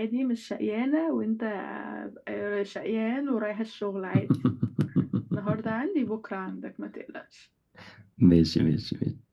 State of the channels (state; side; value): identical; both; correlation 1.00